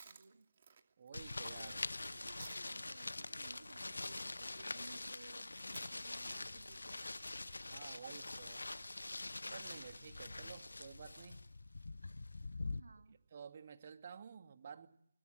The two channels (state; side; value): inverted; both; correlation -0.96